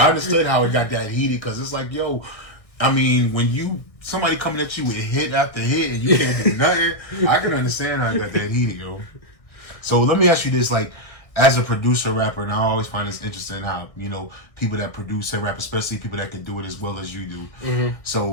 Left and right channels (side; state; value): right; late; 1.6 ms